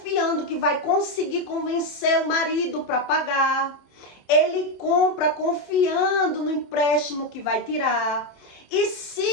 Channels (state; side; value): late; right; 27 ms